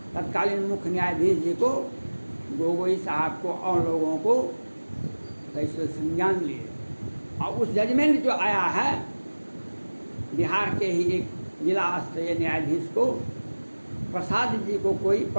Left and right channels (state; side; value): inverted; both; correlation -1.00